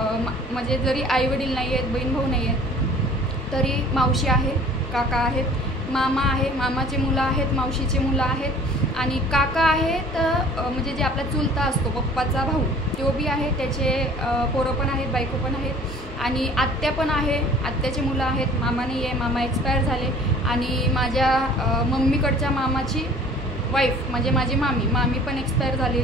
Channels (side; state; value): both; normal; correlation 0.49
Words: म्हणजे जरी आई वडील नाही आहेत, बहीण भाऊ नाही आहेत, तरी मावशी आहे, काका आहेत, मामा आहे, मामाचे मुलं आहेत, मावशीचे मुलं आहेत आणि काका आहेत म्हणजे जे आपला चुलता असतो पप्पाचा भाऊ, तो बी आहे. त्याचे पोरं पण आहेत, बायको पण आहेत आणि आत्या पण आहे, आत्याचे मुलं आहेत. मामा नाही आहे, मामा एक्सपायर झाले. आणि माझ्या मम्मीकडच्या मामाची वाईफ म्हणजे माझी मामी पण एक्सपायर